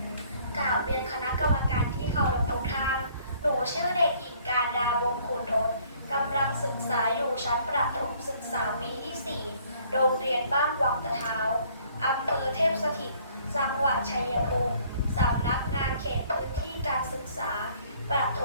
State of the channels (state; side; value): inverted; both; correlation -0.60